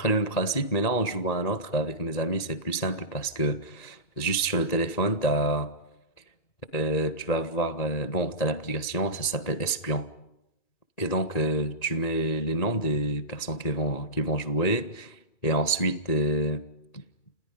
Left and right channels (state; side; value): late; right; 1.9 ms